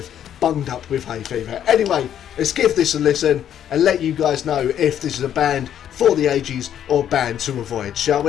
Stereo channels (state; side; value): quieter; right; 10.0 dB